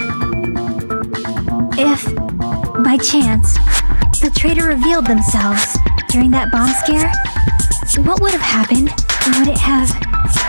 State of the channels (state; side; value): inverted; both; correlation -1.00